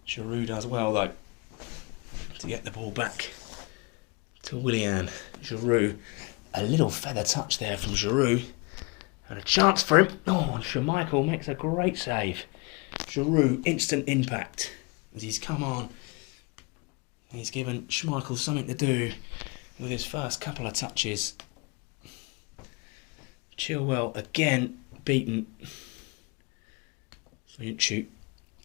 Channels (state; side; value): quieter; right; 29.0 dB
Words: Giroud does well though to get the ball back to Willian. Giroud, a little feather touch there from Giroud. And a chance for him. Oh, and Schmeichel makes a great save. Giroud, instant impact as he's come on. He's given Schmeichel something to do with his first couple of touches. Chilwell again beaten. Shoot.